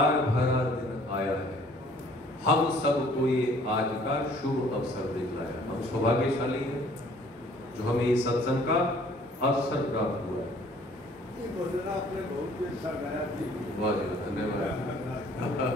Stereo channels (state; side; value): normal; both; correlation 0.56